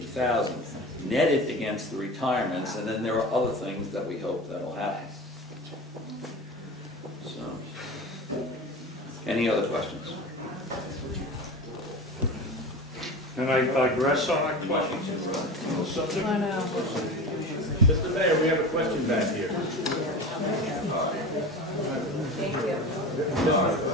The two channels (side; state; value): both; normal; correlation 0.31